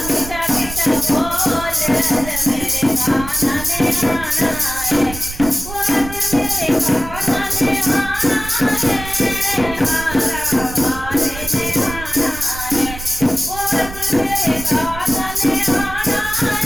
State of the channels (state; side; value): noise; right; rumble, 11 dB below the sound